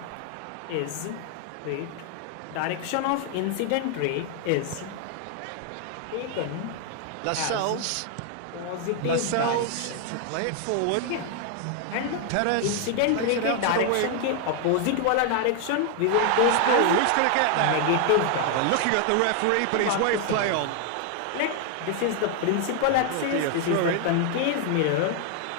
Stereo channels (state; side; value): different; both; correlation 0.00